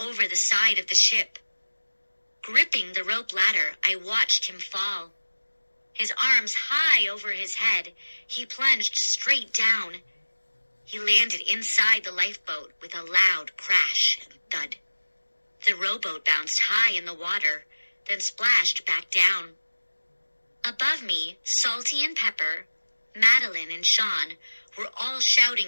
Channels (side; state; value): both; inverted; correlation -1.00